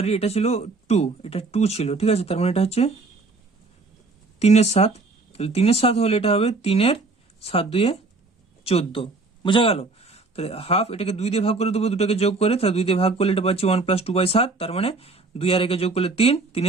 এটা ছিল 2, এটা 2 ছিল, ঠিক আছে, তার মানে এটা হচ্ছে 3 এর 7, তাহলে 3 এর 7 হলে এটা হবে 3 এর 7 2 এ 14, বোঝা গেল। তাহলে হাফ, এটাকে 2 দিয়ে ভাগ করে দেবো, দুটোকে যোগ করে, তাহলে 2 দিয়ে ভাগ করলে এটা পাচ্ছি 1 প্লাস 2/7, তার মানে 2 আর 1 যোগ করলে 3, 3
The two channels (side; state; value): left; quieter; 3.6 dB